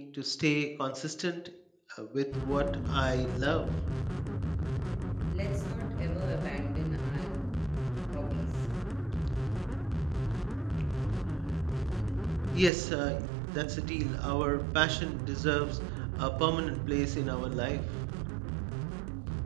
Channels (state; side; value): drops out; left; at 12.7 s